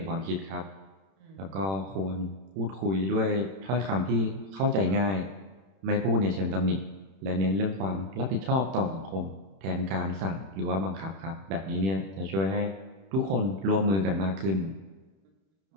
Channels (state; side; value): late; left; 31 ms